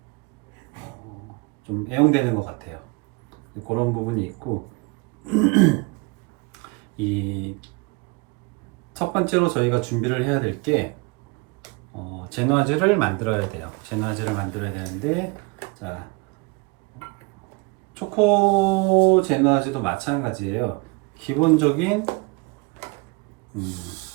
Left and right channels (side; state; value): left; quieter; 28.3 dB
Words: 좀 애용되는 것 같아요. 그런 부분이 있고, 이 첫 번째로 저희가 준비를 해야 될 게 제누아즈를 만들어야 돼요. 제누아즈를 만들어야 되는데, 자, 초코 제누아즈도 마찬가지예요. 기본적인